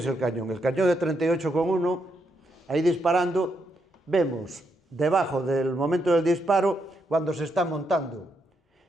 el cañón. El cañón de 38,1, ahí disparando, vemos debajo del momento del disparo cuando se está montando.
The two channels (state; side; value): normal; both; correlation 0.79